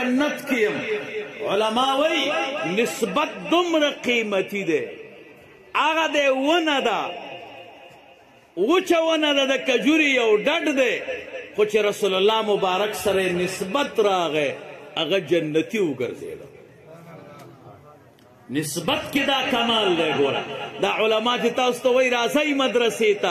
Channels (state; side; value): identical; both; correlation 1.00